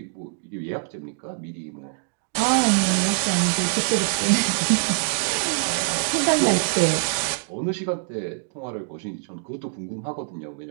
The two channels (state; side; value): silent; left; digital silence